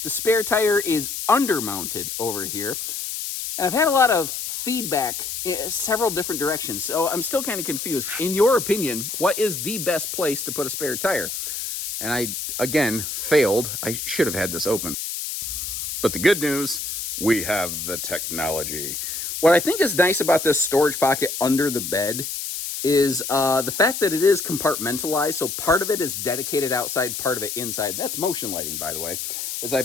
the spare tire is undermounted over here. And I've had a lot of feedback in several different directions, so I'm still kind of confused. In your opinion, what is the best place to put a spare tire? And I, again, failed. I should have had this open. But the good news, we have the technology. What I think is nice about this storage pocket under the bed is the fact that it is compartmentalized. So part of it is dedicated outside, part of it inside. That's motion lighting, by the way. As I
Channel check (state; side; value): noise; left; hiss, 5 dB below the sound